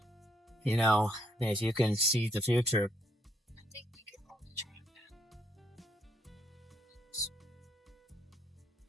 You know, if you can see the future. I think we could probably try that.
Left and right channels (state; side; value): normal; both; correlation 0.72